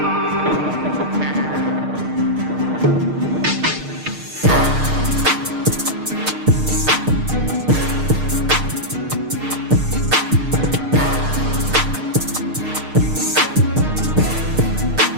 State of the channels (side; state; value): left; late; 6.5 ms